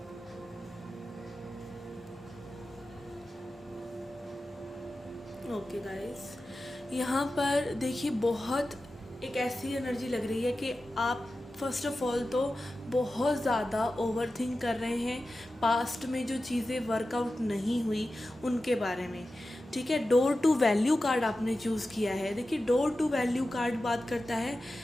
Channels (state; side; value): normal; both; correlation 0.93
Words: Okay guys, यहाँ पर देखिए बहुत एक ऐसी एनर्जी लग रही है कि आप फर्स्ट ऑफ ऑल तो बहुत ज़्यादा ओवर थिंक कर रहे हैं पास्ट में जो चीज़ें वर्कआउट नहीं हुई उनके बारे में। ठीक है, डोर टू वैल्यू कार्ड आपने चूज़ किया है। देखिए, डोर टू वैल्यू कार्ड बात करता है